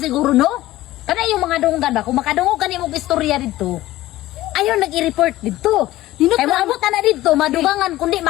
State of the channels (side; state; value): right; quieter; 16.1 dB